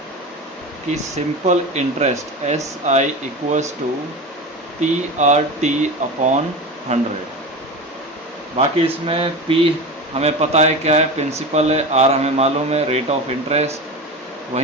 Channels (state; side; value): normal; both; correlation 0.27